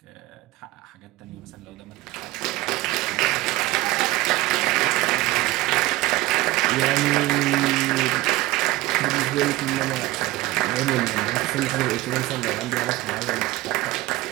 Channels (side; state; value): left; quieter; 18.7 dB